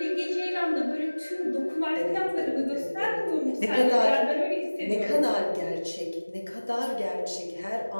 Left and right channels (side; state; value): both; inverted; correlation -1.00